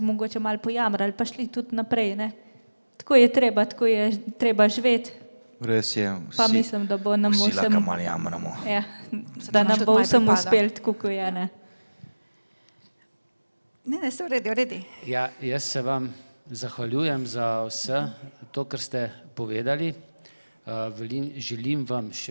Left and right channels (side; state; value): both; inverted; correlation -1.00